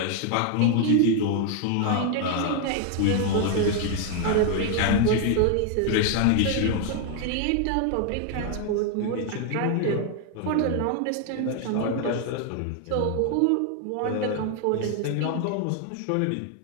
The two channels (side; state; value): both; different; correlation 0.00